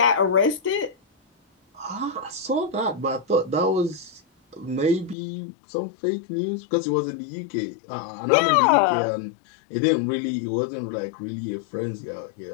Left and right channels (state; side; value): drops out; right; at 5.2 s